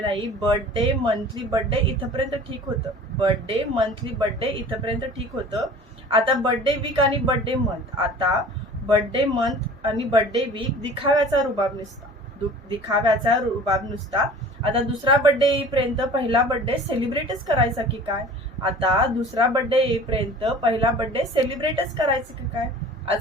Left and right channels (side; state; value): both; normal; correlation 0.44